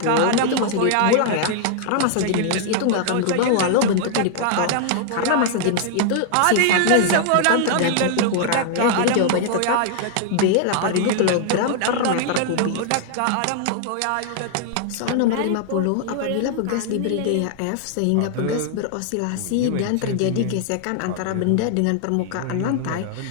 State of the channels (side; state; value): both; different; correlation 0.00